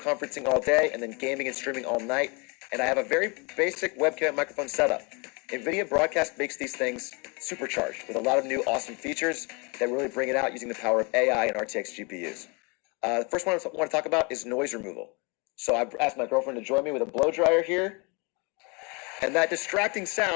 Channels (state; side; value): quieter; right; 30.7 dB